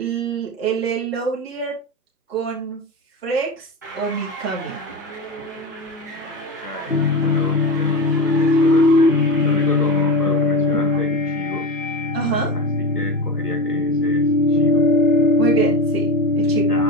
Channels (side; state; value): both; normal; correlation 0.23